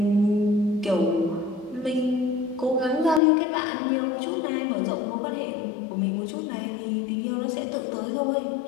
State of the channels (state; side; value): drops out; right; at 3.2 s